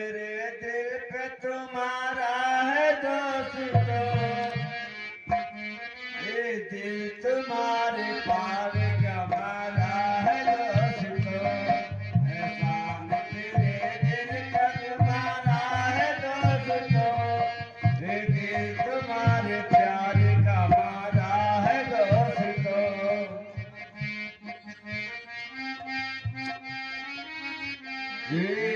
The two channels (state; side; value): identical; both; correlation 1.00